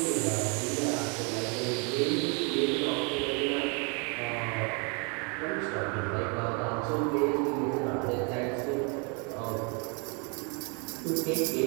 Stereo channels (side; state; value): left; quieter; 34.4 dB